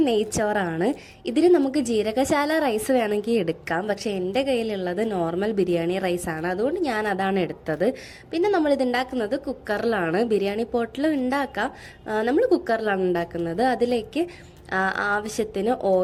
നെയ്ച്ചോറാണ്. ഇതിന് നമുക്ക് ജീരകശാല റൈസ് വേണമെങ്കിൽ എടുക്കാം, പക്ഷേ എൻ്റെ കയ്യിലുള്ളത് നോർമൽ ബിരിയാണി റൈസാണ്, അതുകൊണ്ട് ഞാൻ അതാണ് എടുത്തത്. പിന്നെ നമ്മളിത് ഉണ്ടാക്കുന്നത് കുക്കറിലാണ്. ബിരിയാണി പോട്ടിൽ ഉണ്ടാക്കാം, നമ്മൾ കുക്കറിലാണ് ഉണ്ടാക്കുന്നത്. അതിലേക്ക് ആവശ്യത്തിന്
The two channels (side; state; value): both; identical; correlation 1.00